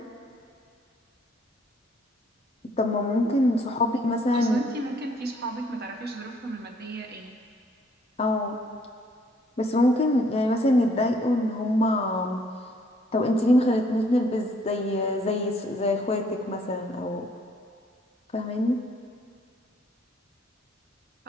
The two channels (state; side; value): normal; both; correlation 0.64